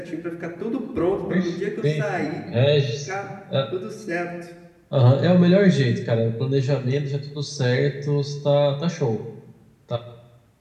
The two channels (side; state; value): both; identical; correlation 1.00